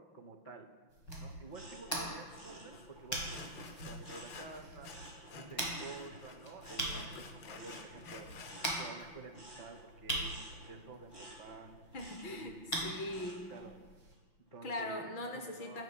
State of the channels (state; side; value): late; right; 5.9 ms